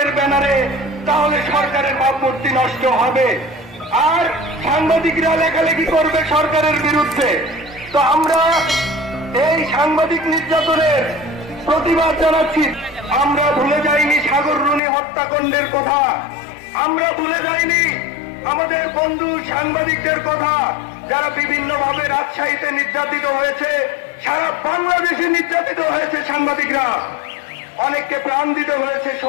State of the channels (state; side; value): drops out; right; at 14.8 s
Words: ব্যানারে, তাহলে সরকারের ভাবমূর্তি নষ্ট হবে আর সাংবাদিকরা লেখালেখি করবে সরকারের বিরুদ্ধে। তো আমরা এই সাংবাদিক নির্যাতনের প্রতিবাদ জানাচ্ছি। আমরা ভুলে যাইনি সাগর রুনি হত্যাকাণ্ডের কথা, আমরা ভুলে যাইনি আমাদের বন্ধু সাংবাদিকদের কথা যারা বিভিন্নভাবে রাজশাহীতে নির্যাতিত হয়েছে, সারা বাংলাদেশে নির্যাতিত হয়েছে সাংবাদিকরা। অনেককে প্রাণ দিতে হয়েছে